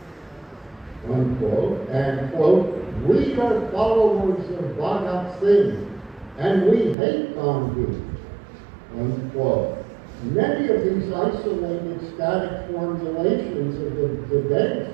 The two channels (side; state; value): left; drops out; at 7.0 s